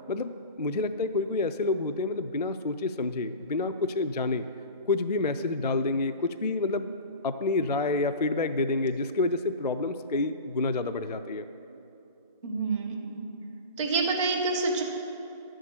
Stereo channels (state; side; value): inverted; both; correlation -0.32